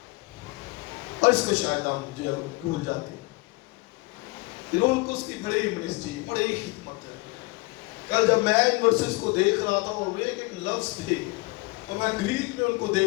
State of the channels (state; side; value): quieter; right; 25.5 dB